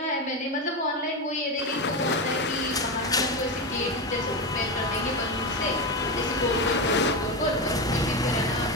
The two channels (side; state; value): both; normal; correlation 0.15